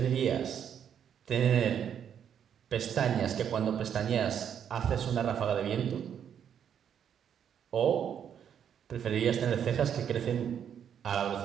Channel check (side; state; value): left; quieter; 8.6 dB